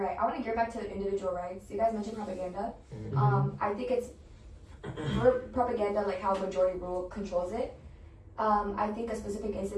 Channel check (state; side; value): identical; both; correlation 1.00